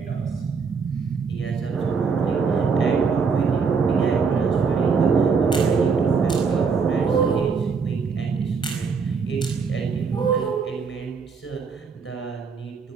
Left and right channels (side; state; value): left; quieter; 5.4 dB